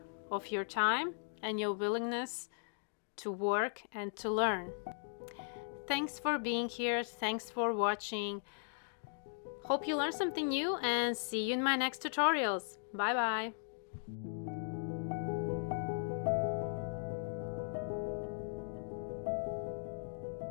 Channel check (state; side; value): silent; right; digital silence